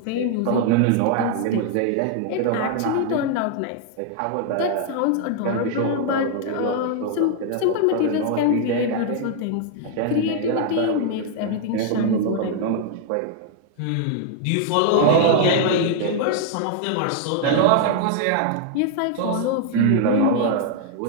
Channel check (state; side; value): different; both; correlation 0.00